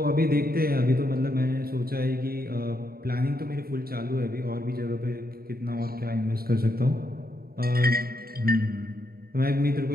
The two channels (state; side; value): late; left; 0.44 ms